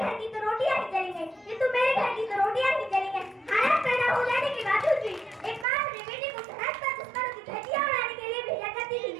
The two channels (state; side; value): drops out; left; at 5.7 s